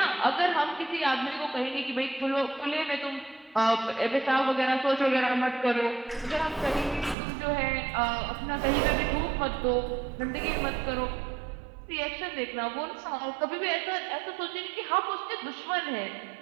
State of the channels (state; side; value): drops out; left; at 7.2 s